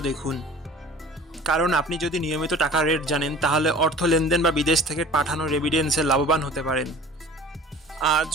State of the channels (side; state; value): both; normal; correlation 0.44